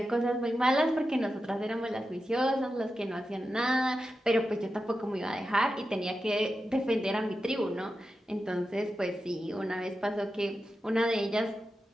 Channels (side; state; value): both; normal; correlation 0.91